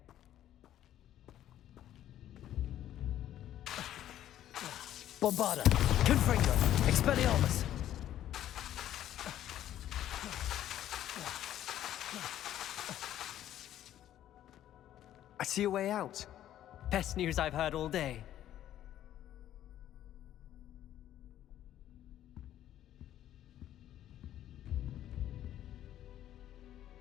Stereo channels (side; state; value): right; quieter; 12.0 dB